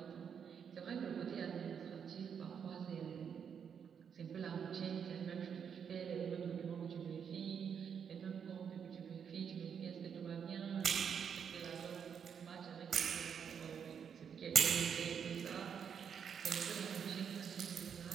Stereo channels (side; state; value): left; quieter; 7.4 dB